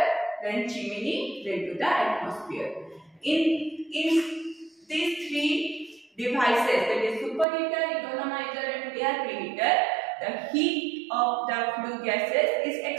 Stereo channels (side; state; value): left; drops out; at 7.5 s